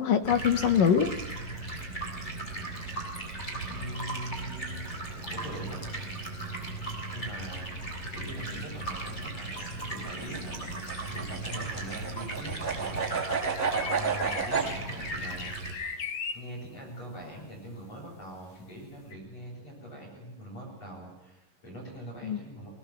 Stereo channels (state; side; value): late; right; 11 ms